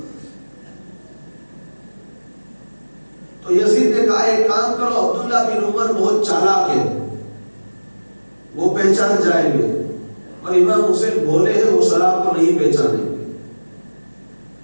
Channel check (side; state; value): both; inverted; correlation -1.00